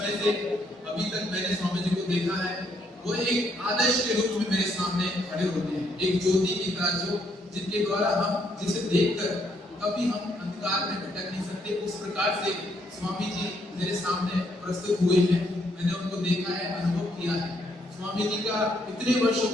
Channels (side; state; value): both; normal; correlation 0.72